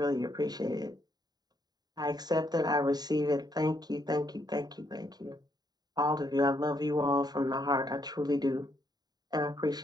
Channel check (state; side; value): late; left; 0.20 ms